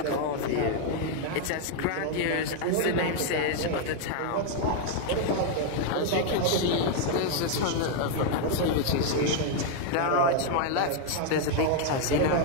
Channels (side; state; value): both; different; correlation 0.00